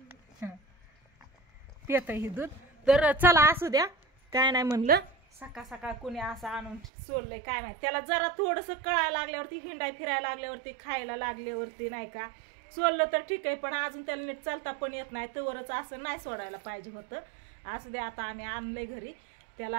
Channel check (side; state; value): left; drops out; at 6.9 s